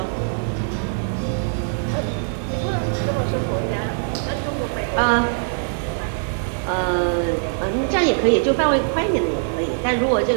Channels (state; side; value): silent; left; digital silence